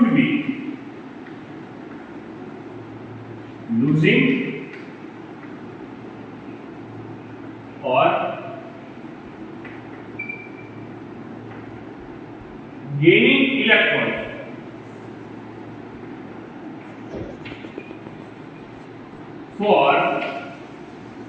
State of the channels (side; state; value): both; identical; correlation 1.00